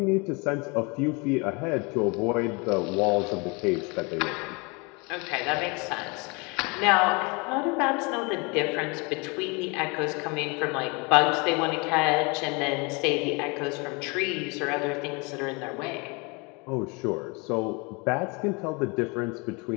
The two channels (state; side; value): quieter; right; 29.3 dB